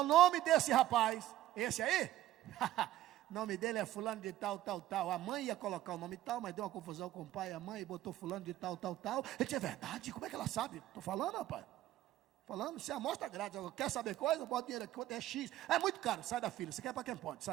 nome desse rapaz? Esse aí? O nome dele é fulano de tal. A mãe ia colocar o nome tal, mas deu uma confusão com o pai e a mãe, e botou fulano de tal. Ele disse: é verdade? Como é que ela sabe? Estou falando, rapaz. Falando, você amostra grátis. Quer saber coisa? Bota dinheiro aqui, quanto é X. É muito caro, sai da fila. Você quer para quem pode?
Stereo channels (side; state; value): left; quieter; 14.2 dB